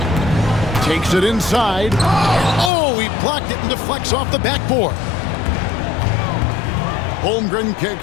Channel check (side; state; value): right; drops out; at 2.7 s